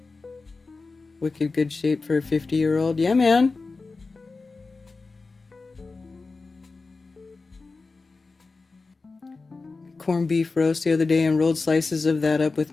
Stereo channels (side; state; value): right; quieter; 3.9 dB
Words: Wicked good shape for a 50-year-old. Yeah, man. Corned beef roast the other day and rolled slices of that up with